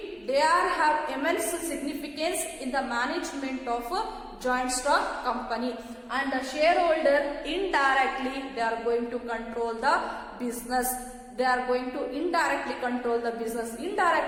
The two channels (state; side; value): identical; both; correlation 1.00